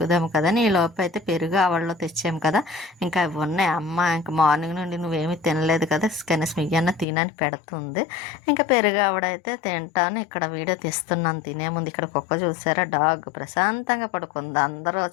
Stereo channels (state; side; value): drops out; right; at 7.1 s